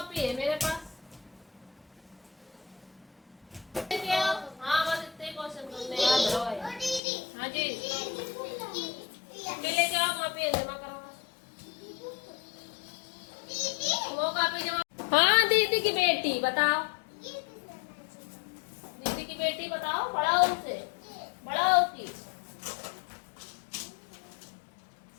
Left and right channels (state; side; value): drops out; right; at 7.0 s